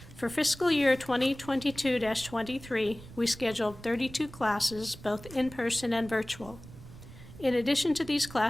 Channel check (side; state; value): right; noise; rumble, 17 dB below the sound